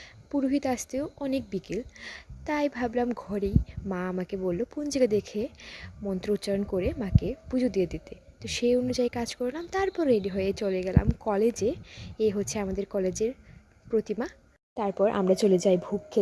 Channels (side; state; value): both; identical; correlation 1.00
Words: পুরোহিত আসতেও অনেক বিকেল। তাই ভাবলাম ঘরেই, মা আমাকে বলল পঞ্জিকা দেখে মন্ত্র উচ্চারণ করে মাকে পুজো দিয়ে দিতে। তো সেই অনুযায়ী কাজ করলাম, তারপর রেডি হয়ে চলে গেলাম কলেজে। এই হচ্ছে আমাদের কলেজের প্রতিমা। তারপর আমরা চলে যাই ভোগ